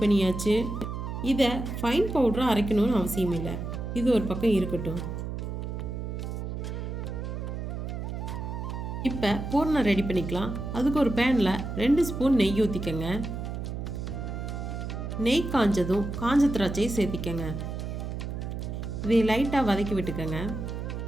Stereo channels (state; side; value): noise; right; hum, 5 dB below the sound